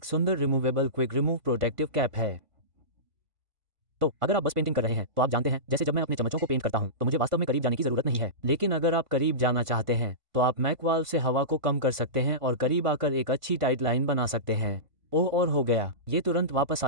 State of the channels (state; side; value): late; left; 1.5 ms